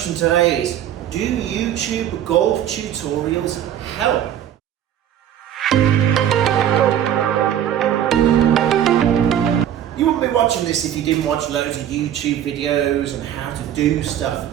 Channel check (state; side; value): quieter; left; 10.4 dB